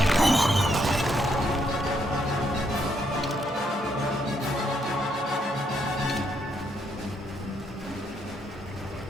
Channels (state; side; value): normal; both; correlation 0.74